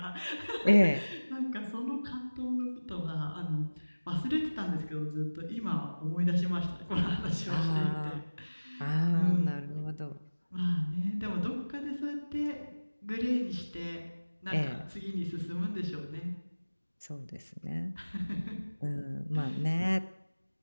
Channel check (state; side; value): inverted; both; correlation -1.00